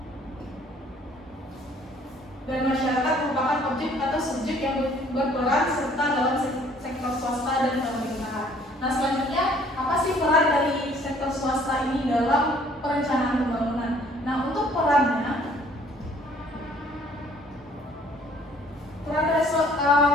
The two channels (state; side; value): normal; both; correlation 0.58